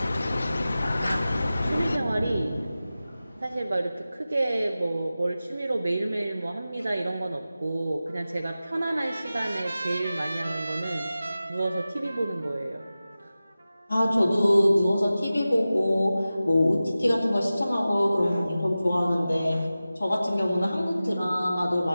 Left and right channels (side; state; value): both; inverted; correlation -0.95